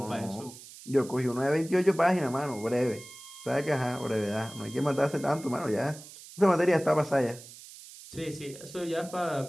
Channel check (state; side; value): noise; right; hiss, 17 dB below the sound